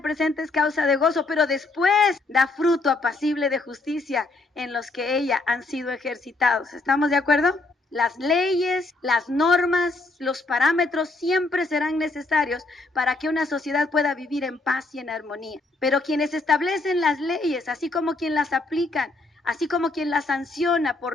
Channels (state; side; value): quieter; right; 3.2 dB